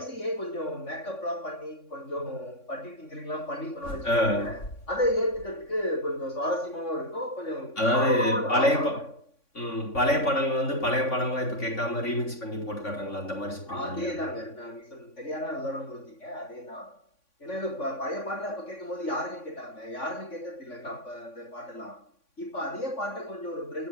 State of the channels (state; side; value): late; right; 3.6 ms